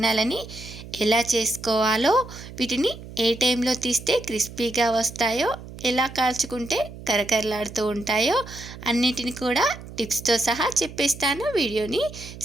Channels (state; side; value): noise; right; hum, 14 dB below the sound